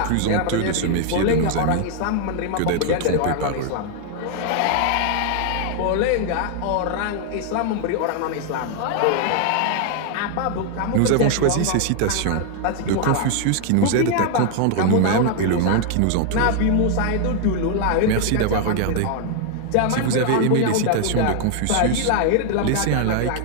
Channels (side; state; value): both; different; correlation 0.00